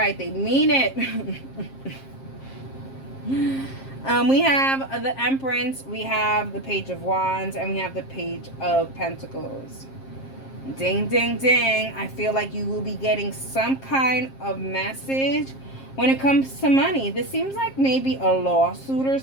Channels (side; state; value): right; late; 7.5 ms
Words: they mean it. We have the Empress, we have the Page of Wands, and we have the Page of Pentacles. Ding, ding, ding. I feel like you will be getting some kind of message when it comes to money. This seems like maybe a lawsuit or